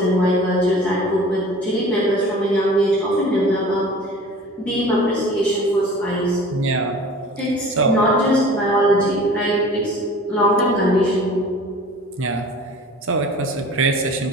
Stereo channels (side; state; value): both; normal; correlation 0.43